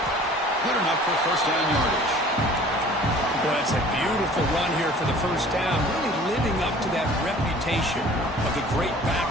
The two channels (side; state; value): both; normal; correlation 0.48